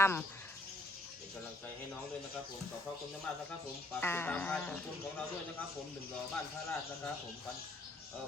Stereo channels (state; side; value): normal; both; correlation 0.66